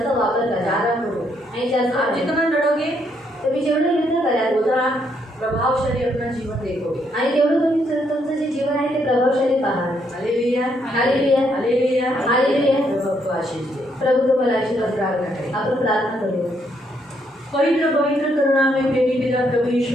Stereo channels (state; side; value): normal; both; correlation 0.73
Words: वापर करा. ज्यादा करो। आणि जास्त आप जितना लड़ोगे तुम्ही जेवढं युद्ध कराल उतना प्रभावशाली अपना जीवन देखोगे। आणि तेवढं तुम्ही तुमचं जे जीवन आहे ते प्रभावशाली पाहाल. Hallelujah, hallelujah, hallelujah, hallelujah. प्रभु आपको आशीष दे। प्रभु तुम्हाला आशीर्वाद द्यावा. प्रार्थना करें। आपण प्रार्थना करूया. पवित्र पवित्र करुणामय प्रेमी पिता प्रभु यीशु